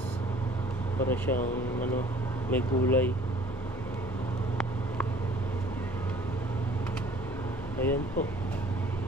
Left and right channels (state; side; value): normal; both; correlation 0.53